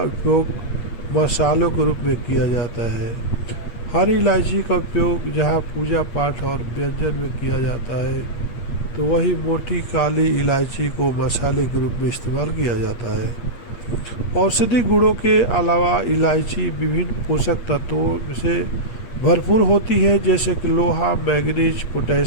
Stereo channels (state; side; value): late; right; 8.5 ms